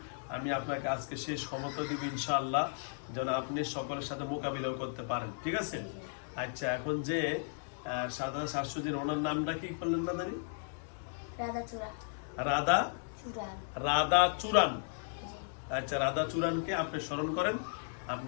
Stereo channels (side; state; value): right; silent; digital silence